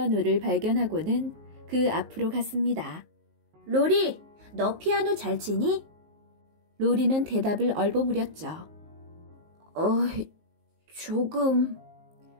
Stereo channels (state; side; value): late; left; 19 ms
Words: 발견하고는 그 앞으로 갔습니다. 로리, 너 피아노 잘 치니? 로리는 대답을 얼버무렸죠. 조금.